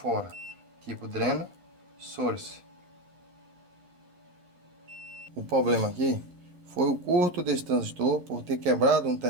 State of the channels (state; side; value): late; left; 11 ms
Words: Tipo dreno, source. O problema aqui foi o curto desse transistor por ter quebrado um